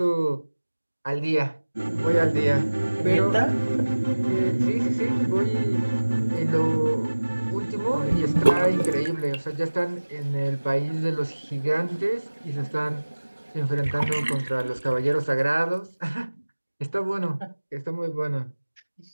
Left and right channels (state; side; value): inverted; both; correlation -1.00